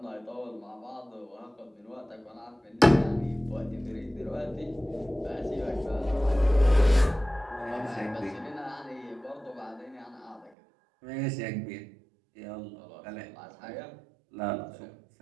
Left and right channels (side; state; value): left; drops out; at 10.5 s